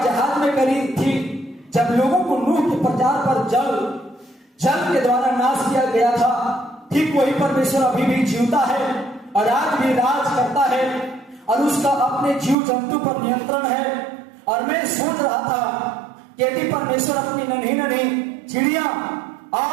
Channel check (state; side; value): drops out; left; at 12.6 s